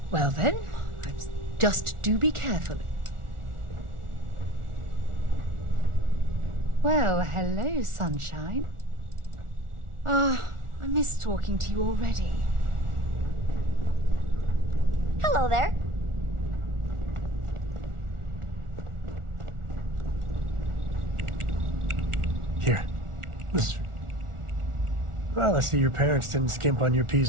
Well then, just do be careful. Well, hello, sunshine. I miss talking to you already. Hello there. Here. This... Well, I see your parents didn't skimp on your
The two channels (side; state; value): left; late; 1.4 ms